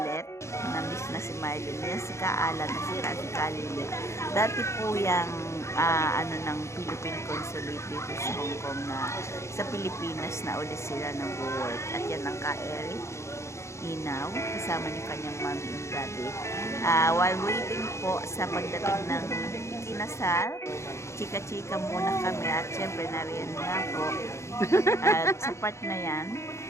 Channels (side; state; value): right; late; 0.14 ms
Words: na-miss na si Mylene. Yan si Kaalan at si Kalili. Dati po yung ng Philippine Consulate dito sa Hong Kong, na sa Pilipinas na ulit sila nag-work. At yan ang Ka-Eric Inaw, kasama niyo kanyang mommy and daddy. While waiting po sa pagdating ng kinasal, chika-chika muna kami. At syempre nariyan nga po. At sa part na yan,